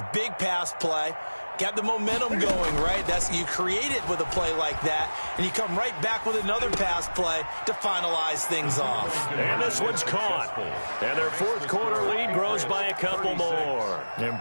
big pass play. Got the momentum going, right? You create it with a play like that, and you come right back with another pass play to finalize things off. And this one's caught. And their fourth quarter lead grows by a couple more. And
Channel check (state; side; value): inverted; both; correlation -1.00